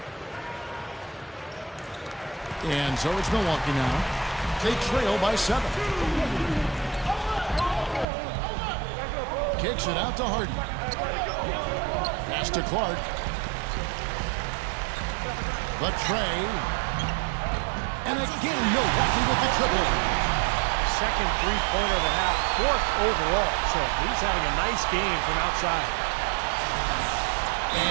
And so it's Milwaukee now. They trail by 7. Kicks it out to Harden. Pass to Clark. The tray. And again, Milwaukee with the triple. Second three-pointer of the half, 4th overall. So he's having a nice game from outside.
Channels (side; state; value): left; drops out; at 8.1 s